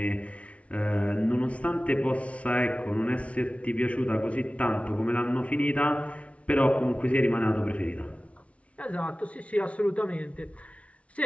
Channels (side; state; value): right; late; 0.063 ms